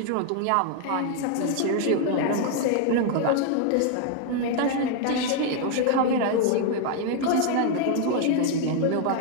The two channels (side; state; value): both; different; correlation 0.00